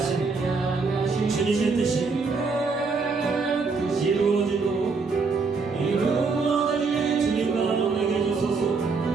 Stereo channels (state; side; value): quieter; left; 4.5 dB